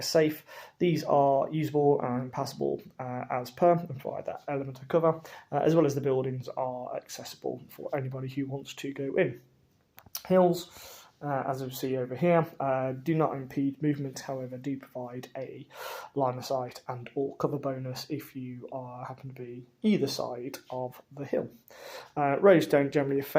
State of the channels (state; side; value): identical; both; correlation 1.00